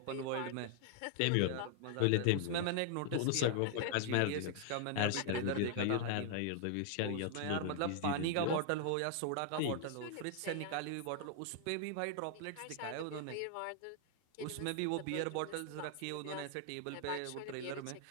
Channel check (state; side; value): different; both; correlation 0.00